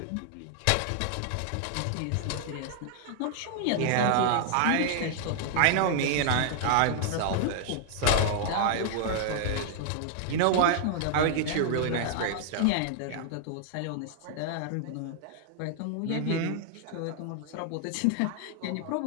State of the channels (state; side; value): different; both; correlation 0.00